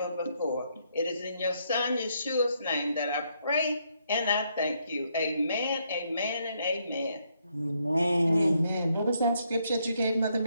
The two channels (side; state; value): both; inverted; correlation -0.75